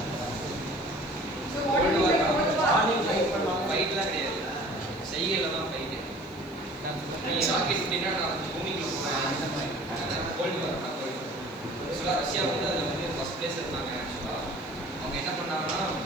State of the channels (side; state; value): left; noise; hiss, 27 dB below the sound